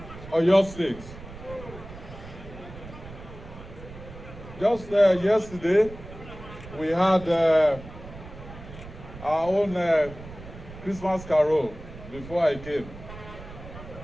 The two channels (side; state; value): right; noise; rumble, 15 dB below the sound